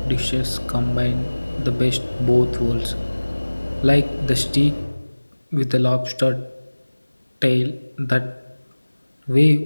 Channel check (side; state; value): both; inverted; correlation -1.00